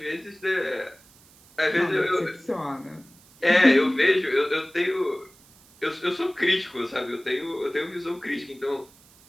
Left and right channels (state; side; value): noise; right; hiss, 27 dB below the sound